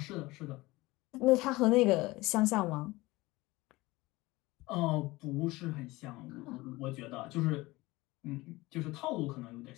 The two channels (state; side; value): quieter; right; 20.6 dB